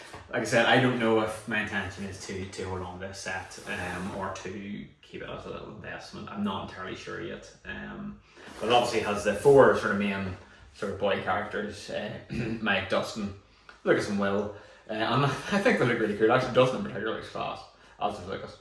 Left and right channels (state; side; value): identical; both; correlation 1.00